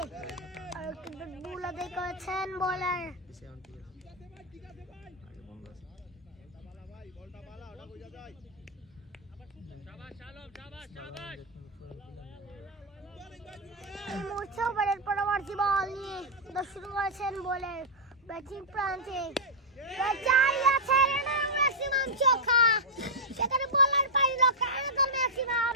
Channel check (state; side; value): normal; both; correlation -0.07